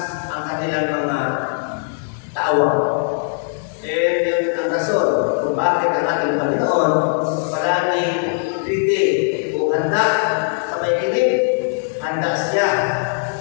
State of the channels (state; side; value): silent; right; digital silence